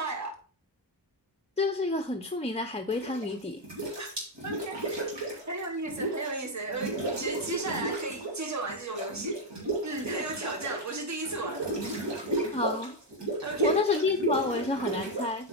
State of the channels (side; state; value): both; normal; correlation 0.04